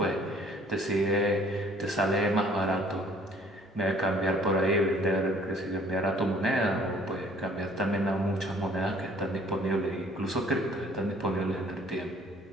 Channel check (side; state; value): both; normal; correlation 0.57